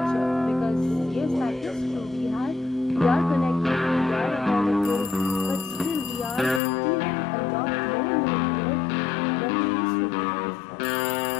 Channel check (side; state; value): right; drops out; at 6.6 s